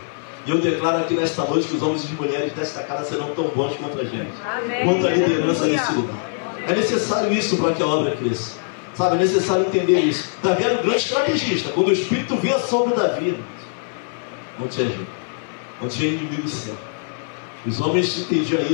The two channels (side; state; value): right; silent; 59 dB below the other